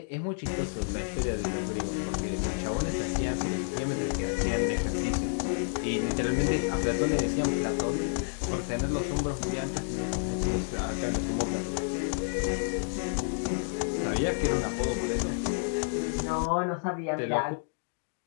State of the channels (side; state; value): right; silent; digital silence